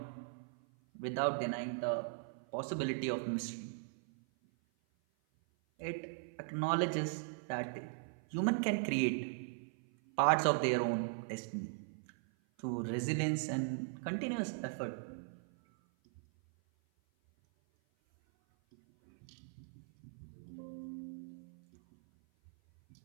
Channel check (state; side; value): silent; left; 52 dB below the other